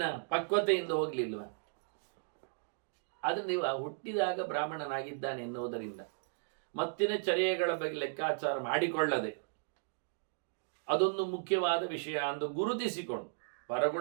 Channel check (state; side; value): silent; left; digital silence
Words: ಪಕ್ವತೆಯಿಂದ ಹೋಗಲಿಲ್ವ? ಆದರೆ ನೀವು ಹುಟ್ಟಿದಾಗ ಬ್ರಾಹ್ಮಣನಾಗಿದ್ದಾನೆ ಎನ್ನುವುದರಿಂದ ಮತ್ತಿನ ಚರ್ಯೆಗಳ ಬಗ್ಗೆ ಲೆಕ್ಕಾಚಾರ ಮಾಡಿಕೊಳ್ಳದೆ ಅದೊಂದು ಮುಖ್ಯವಾದ ವಿಷಯ ಎಂದು ಗುರುತಿಸಿಕೊಂಡು